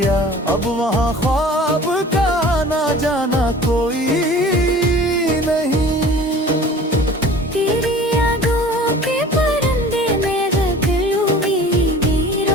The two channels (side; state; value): both; normal; correlation 0.44